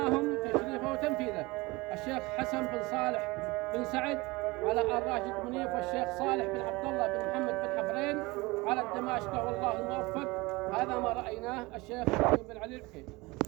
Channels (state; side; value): quieter; left; 23.1 dB